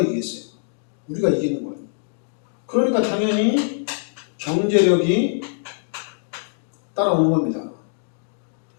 이기겠어요? 우리가 이기는 거예요. 그러니까 당연히 경제력이 따라오는 겁니다.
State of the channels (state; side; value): silent; right; digital silence